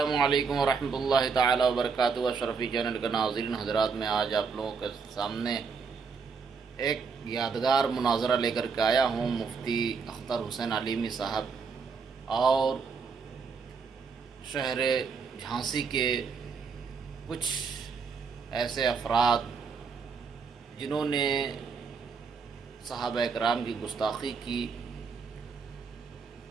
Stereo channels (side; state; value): left; quieter; 5.4 dB